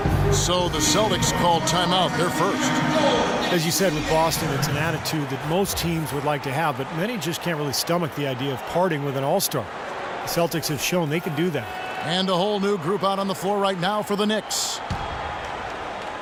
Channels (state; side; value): identical; both; correlation 1.00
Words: So the Celtics called timeout. They're first. As you said with Boston, it's an attitude that most teams would like to have, but many just can't really stomach the idea of parting with an all-star. The Celtics have shown they can do that. And a whole new group out on the floor right now for the Knicks.